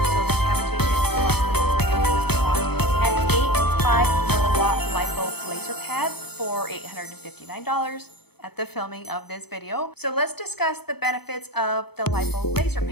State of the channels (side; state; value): right; late; 0.97 ms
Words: so the cavitation plus the radio frequency wands, and 8 5 milliwatt lipo laser pads for $859 at the filming of this video. So let's discuss the benefits of the lipo laser